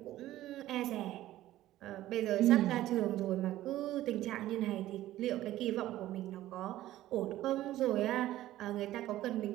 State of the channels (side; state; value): left; quieter; 14.6 dB